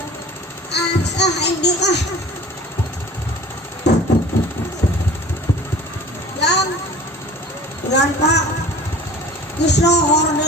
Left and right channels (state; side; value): normal; both; correlation 0.43